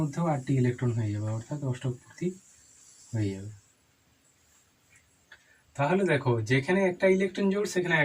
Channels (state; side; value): identical; both; correlation 1.00